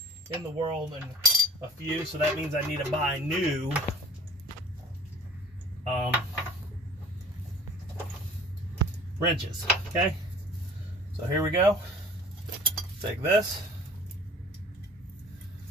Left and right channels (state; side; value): normal; both; correlation 0.46